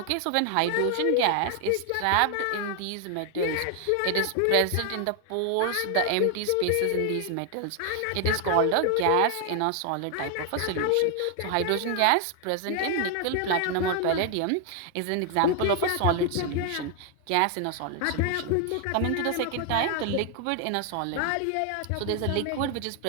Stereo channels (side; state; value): both; different; correlation 0.00